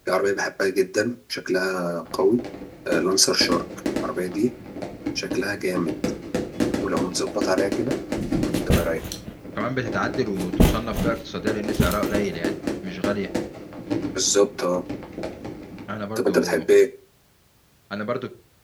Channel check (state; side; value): identical; both; correlation 1.00